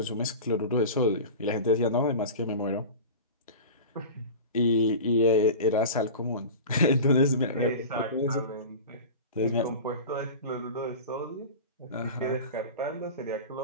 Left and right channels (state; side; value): inverted; both; correlation -0.31